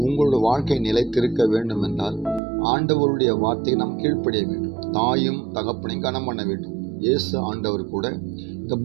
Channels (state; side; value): drops out; left; at 2.4 s